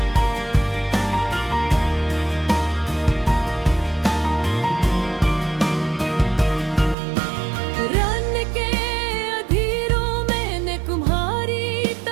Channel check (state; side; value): drops out; left; at 7.0 s